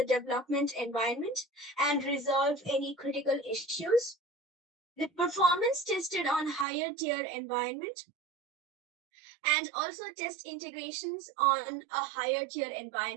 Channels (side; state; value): left; drops out; at 6.7 s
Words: development environment and resolve any critical issues. The performance tested on higher tier environment and also test integrations on a higher tier